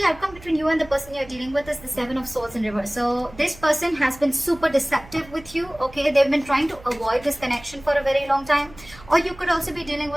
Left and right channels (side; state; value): right; noise; hum, 21 dB below the sound